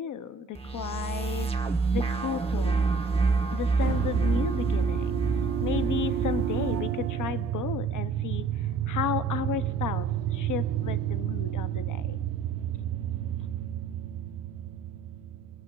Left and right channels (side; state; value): left; quieter; 3.5 dB